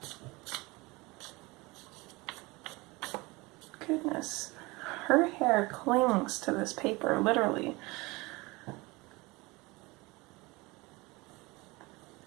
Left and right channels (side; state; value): left; quieter; 23.6 dB